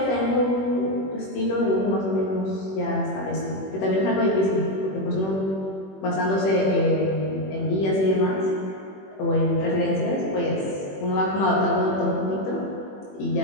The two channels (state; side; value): late; right; 21 ms